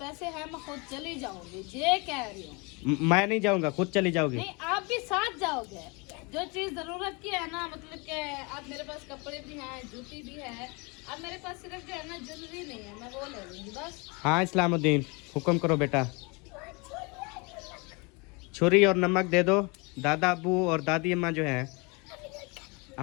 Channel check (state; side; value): quieter; right; 29.3 dB